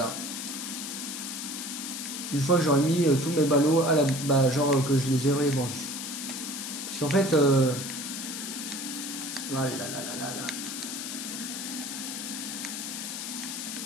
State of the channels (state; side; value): noise; left; hiss, 6 dB below the sound